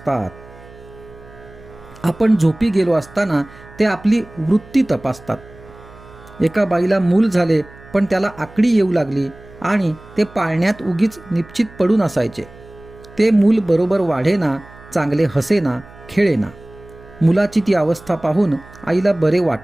आपण झोपी गेलो असताना ते आपली वृत्ती तपासतात. एका बाईला मूल झाले पण त्याला आकडी येऊ लागली आणि ते पाळण्यात उगीच निश्चित पडून असायचे. ते मूल बरोबर वाढेना, चांगले हसेना, खेळेना. मुलाची ती अवस्था पाहून आईला बरे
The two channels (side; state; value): right; noise; hum, 21 dB below the sound